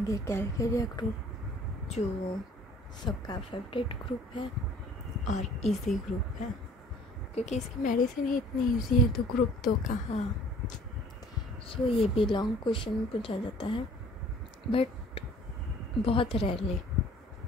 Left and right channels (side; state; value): both; normal; correlation 0.53